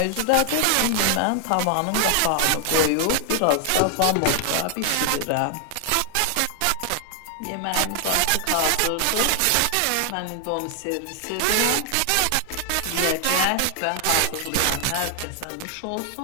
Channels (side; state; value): both; different; correlation 0.00